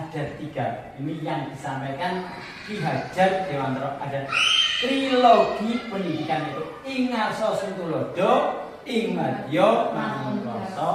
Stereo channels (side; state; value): both; identical; correlation 1.00